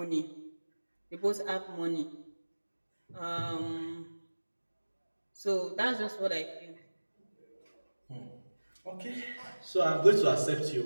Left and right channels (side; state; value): both; inverted; correlation -1.00